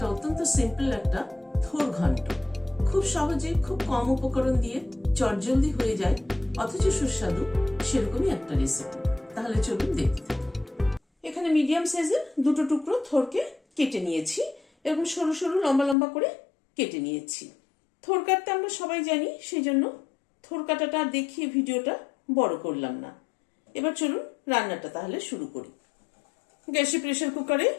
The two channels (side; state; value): right; drops out; at 16.0 s